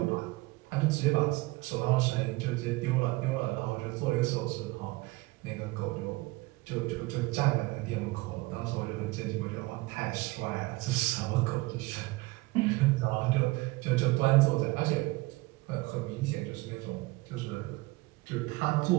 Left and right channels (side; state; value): left; quieter; 22.2 dB